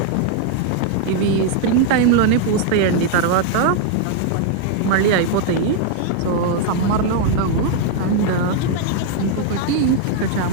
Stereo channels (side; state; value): both; different; correlation 0.00